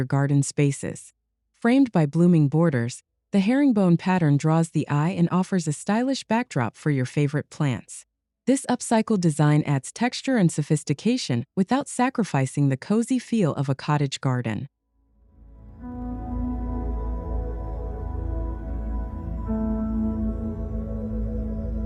garden spaces. Framed by blooming borders, the herringbone pattern draws the eye and offers a stylish backdrop for your favorite plants. This upcycled design adds texture and sophistication without sacrificing the cozy feel of a cottage garden.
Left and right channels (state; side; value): identical; both; correlation 1.00